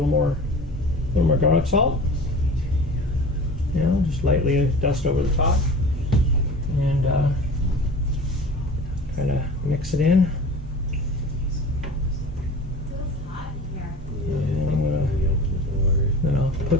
more garlic salt. You know, just lightly dust over the top, and kind of mix it in. And then I'll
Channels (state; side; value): normal; both; correlation 0.39